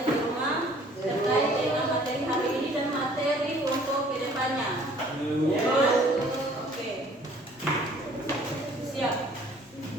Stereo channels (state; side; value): normal; both; correlation 0.55